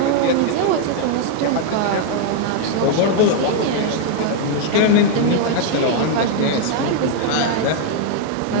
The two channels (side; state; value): both; different; correlation 0.00